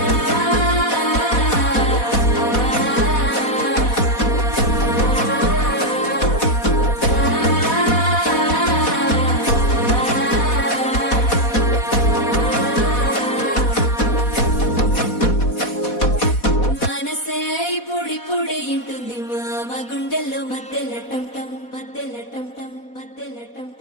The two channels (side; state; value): right; late; 4.1 ms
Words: మనసే పొడి పొడి ఇంటుంది మామ గుండెల్లో మధ్యల టంటం మధ్యల టంటం మధ్యల